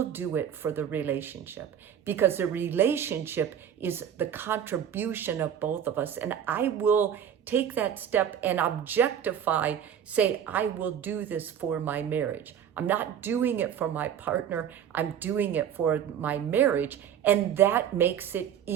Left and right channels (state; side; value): quieter; left; 9.1 dB